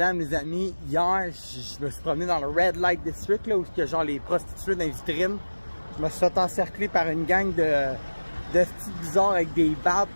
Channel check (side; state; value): both; inverted; correlation -1.00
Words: les amis. Hier, je me suis promené dans le Red Light District, là, où il y a genre les prostituées dans les vitrines. Je me suis fait encercler par une gang de petits bizarres avec des barbes